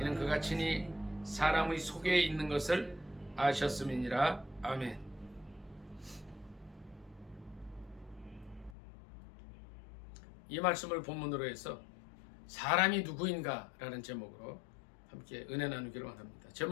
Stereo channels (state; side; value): drops out; right; at 8.8 s